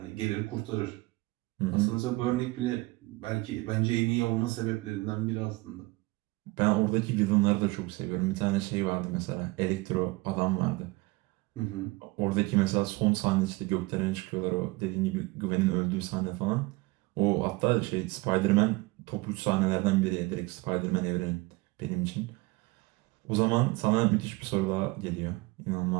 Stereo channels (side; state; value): left; quieter; 22.9 dB